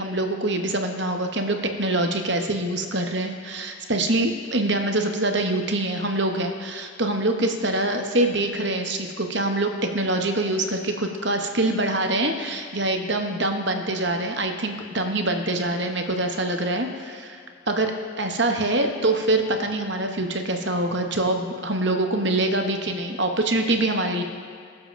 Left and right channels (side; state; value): both; normal; correlation 0.07